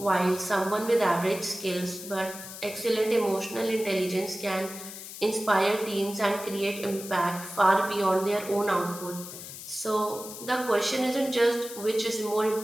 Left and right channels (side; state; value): left; noise; hiss, 12 dB below the sound